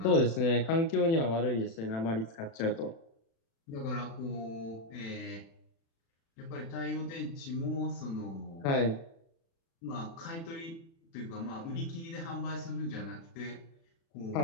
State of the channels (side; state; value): right; late; 36 ms